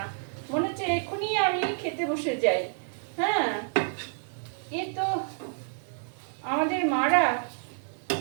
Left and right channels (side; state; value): left; silent; 59 dB below the other